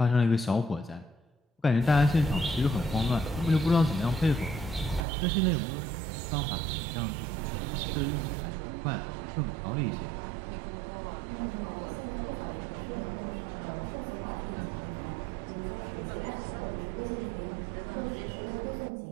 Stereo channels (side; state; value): left; drops out; at 5.0 s